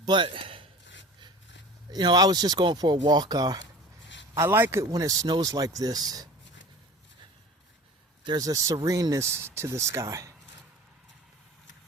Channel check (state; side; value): normal; both; correlation 0.39